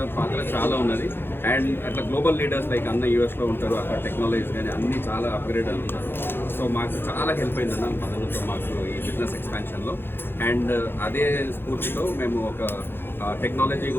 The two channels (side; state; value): right; late; 0.10 ms